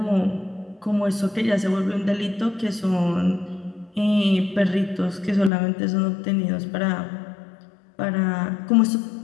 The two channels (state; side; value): drops out; right; at 5.5 s